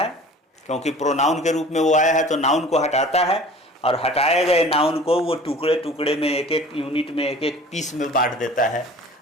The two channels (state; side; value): normal; both; correlation 0.45